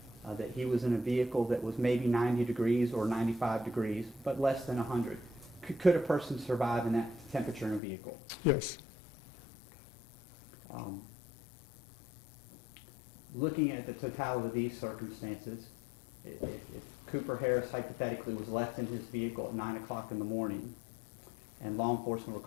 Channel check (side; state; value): right; drops out; at 7.8 s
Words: that he was in a vehicle that was maybe 90 degrees or 95 degrees, but less than 100, could a person survive in that temperature in a vehicle? Yes. Looking at the totality of these circumstances, if Cooper Harris hypothetically was left in his vehicle at 9 o'clock in the morning and law enforcement were